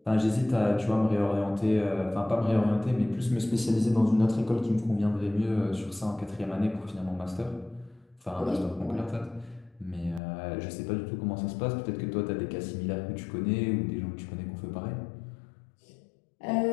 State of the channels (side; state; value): right; drops out; at 10.2 s